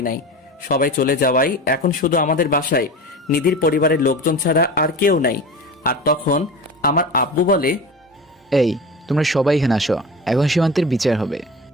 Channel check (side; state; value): both; normal; correlation 0.31